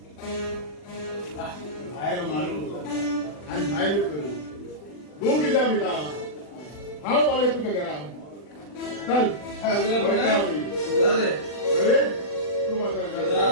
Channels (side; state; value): right; late; 40 ms